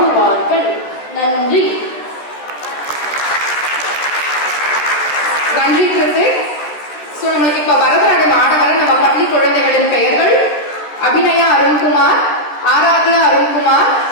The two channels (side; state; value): right; late; 13 ms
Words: நன்றி. நன்றி கிருத்திக். நம்மளுக்கு இப்ப பரதநாட்டியம் ஆட வர நம்ம பள்ளி குழந்தைகளின் பெயர்கள்: அபிநயா அருண்குமார், ஆராத்யா அருண்குமார்,